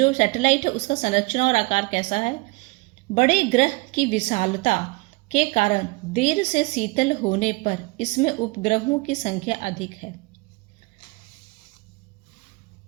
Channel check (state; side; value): quieter; left; 25.7 dB